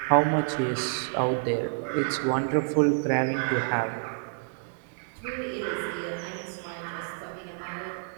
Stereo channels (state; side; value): silent; left; digital silence